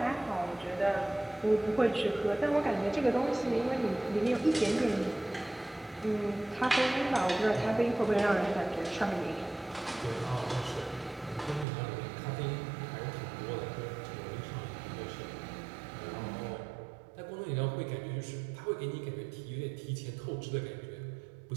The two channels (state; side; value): drops out; left; at 11.7 s